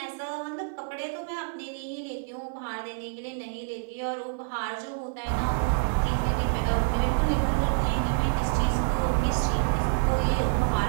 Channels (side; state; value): left; silent; digital silence